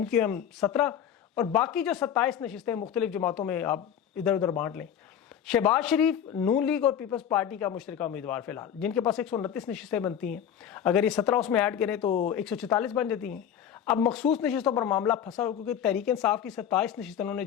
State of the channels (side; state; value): right; quieter; 9.2 dB